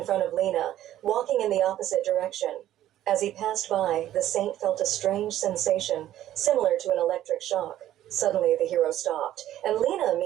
front of Lena, walking in the opposite direction. As he passed by, the saint felt a strange sensation, similar to an electric shock. Suddenly, the hero stopped, and Lena,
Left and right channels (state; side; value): quieter; left; 12.7 dB